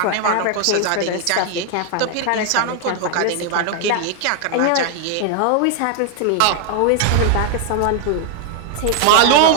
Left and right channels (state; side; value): different; both; correlation 0.00